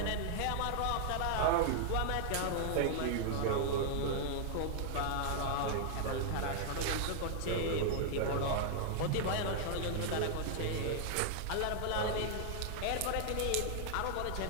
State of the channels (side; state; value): both; different; correlation -0.01